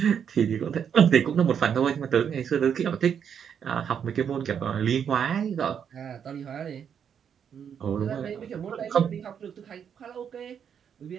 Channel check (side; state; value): left; quieter; 7.9 dB